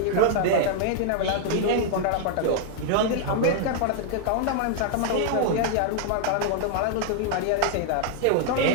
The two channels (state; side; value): different; both; correlation -0.01